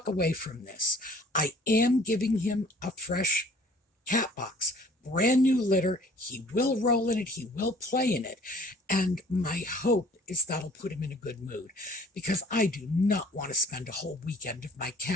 away from this. I am giving him a fresh cat box, brand new litter. He will roll in it. He will play in it. And my hope is that'll put him in a good mood, because I do not want to spend a whole weekend of my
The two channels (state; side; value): normal; both; correlation 0.54